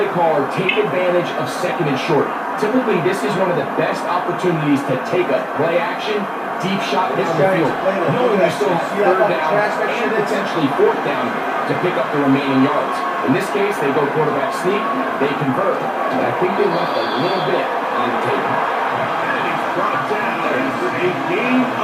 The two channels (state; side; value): identical; both; correlation 1.00